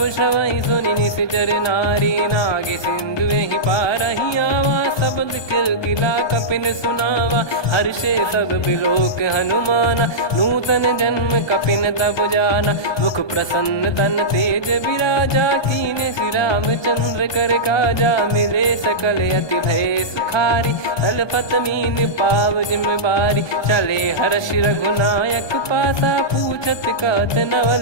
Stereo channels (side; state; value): right; late; 1.2 ms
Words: श्रवहि सुनि निश्चर नारी, नागे सिंधु ही पारहि आवा, शब्द किलकिला कपिन सुनावा, हर्षे सब बिलोक हनुमाना, नूतन जन्म कपिन तब जाना, मुख प्रसन्न तन तेज विराजा, कीने श्री रामचंद्र कर काजा, मिले सकल अति भय सुखारी, तलपत मीन पाव जिम बारी, चले हर्ष रघुनायक पासा, पूछत कहत